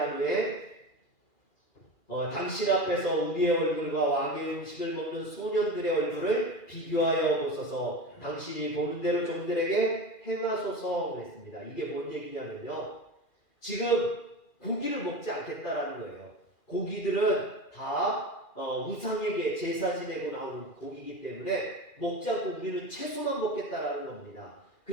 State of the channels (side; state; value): right; late; 2.4 ms